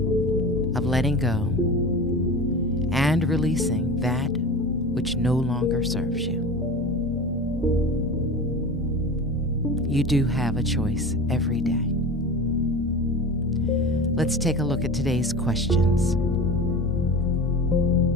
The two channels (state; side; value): normal; both; correlation 0.32